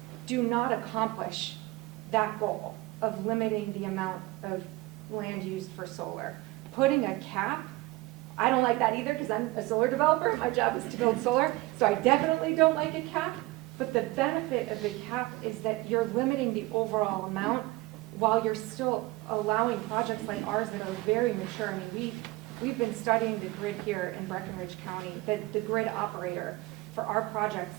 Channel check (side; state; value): left; quieter; 20.6 dB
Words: do not accomplish that goal of limiting the amount of land used for solar. Putting a cap, I don't like that either, because I'm a solar developer. My job is to build solar, so I definitely don't like a cap. But the benefit of the cap is that you're limiting the overall amount while you're still allowing projects like ours that are very mature. I mean, we've been studying the grid here in Breckinridge County, the grid operator for our project